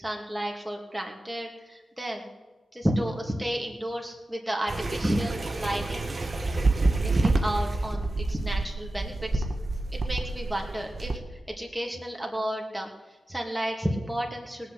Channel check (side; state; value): both; normal; correlation 0.94